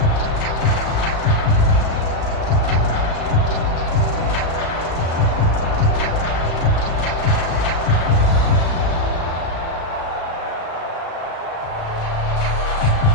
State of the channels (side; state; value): right; late; 36 ms